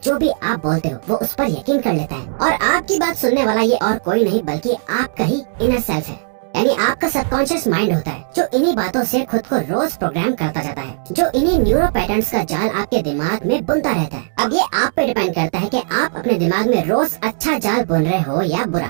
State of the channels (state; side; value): silent; left; digital silence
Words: जो भी आप बोलते हो, वो उस पर यकीन कर लेता है। और आपकी बात सुनने वाला ये और कोई नहीं बल्कि आपका ही इनर सेल्फ है, यानी आपका सबकॉन्शियस माइंड होता है, जो इन्हीं बातों से खुद को रोज प्रोग्राम करता जाता है, जो इन्हीं न्यूरो पैटर्न्स का जाल आपके दिमाग में बुनता रहता है। अब ये आप पे डिपेंड करता है कि आप अपने दिमाग में रोज अच्छा जाल बुन रहे हो या बुरा।